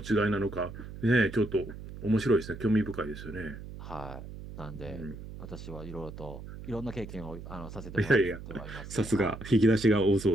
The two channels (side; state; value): right; noise; hum, 12 dB below the sound